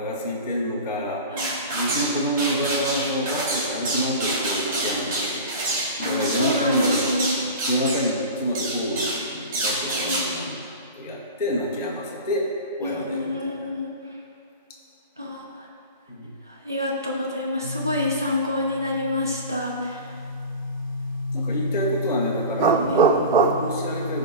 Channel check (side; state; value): both; inverted; correlation -0.33